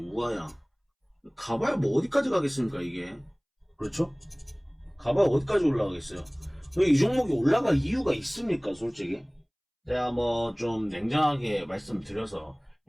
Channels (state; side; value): identical; both; correlation 1.00